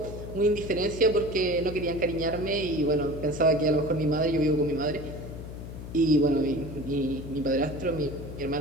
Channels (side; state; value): left; noise; hum, 10 dB below the sound